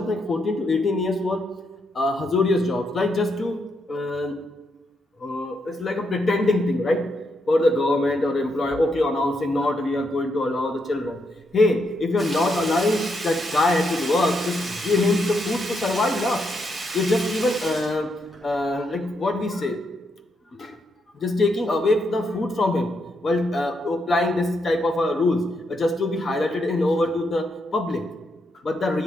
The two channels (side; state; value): both; normal; correlation 0.79